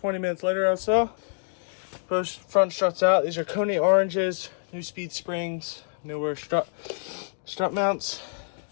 minutes later or so, both front struts out. These are Koni oranges, neuspeed springs, newer strut mounts.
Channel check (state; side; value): silent; right; digital silence